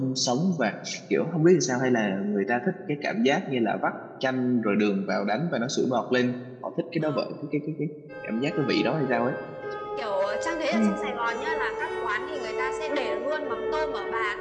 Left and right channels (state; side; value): identical; both; correlation 1.00